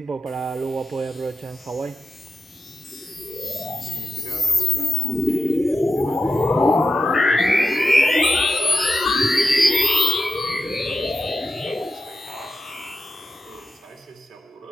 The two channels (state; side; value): normal; both; correlation 0.91